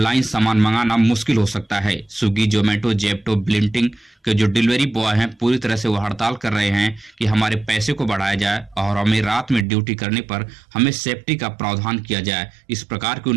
सामान मंगाना मुश्किल हो सकता है। स्विगी, जोमेटो, जेप्टो, ब्लिंकिट के जो डिलीवरी बॉय हैं पूरी तरह से वो हड़ताल कर रहे हैं कि हमारे पैसे को बढ़ाया जाए और हमें रात में ड्यूटी करने पर हमें सेफ्टी का प्रावधान किया जाए। इस प्रकार की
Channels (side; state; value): left; drops out; at 9.7 s